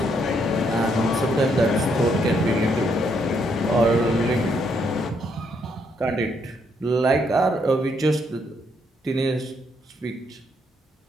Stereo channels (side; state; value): both; normal; correlation 0.73